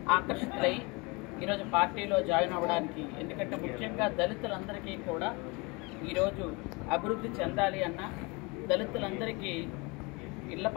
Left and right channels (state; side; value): quieter; right; 27.7 dB